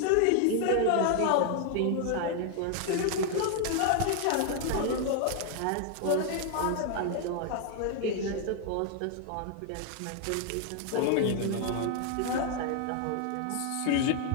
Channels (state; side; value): different; both; correlation 0.00